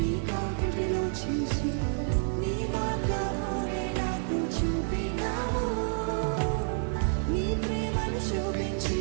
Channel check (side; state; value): left; silent; digital silence